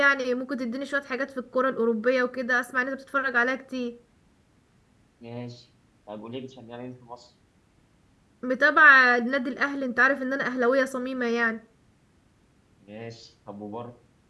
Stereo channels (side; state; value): both; identical; correlation 1.00